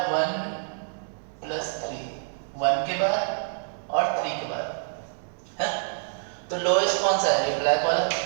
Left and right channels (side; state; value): left; silent; digital silence